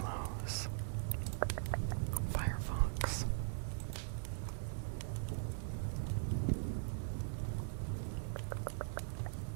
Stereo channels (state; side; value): silent; left; digital silence